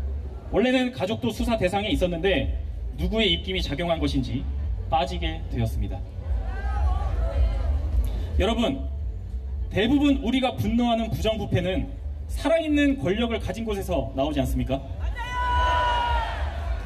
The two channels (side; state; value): both; identical; correlation 1.00